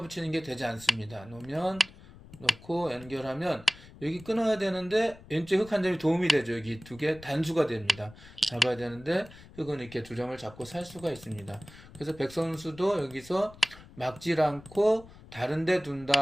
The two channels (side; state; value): left; noise; rumble, 20 dB below the sound